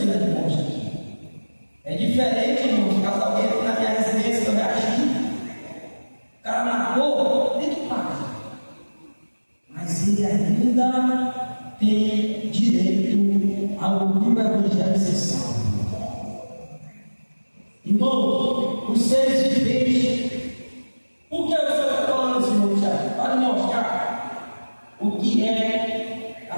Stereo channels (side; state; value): both; inverted; correlation -1.00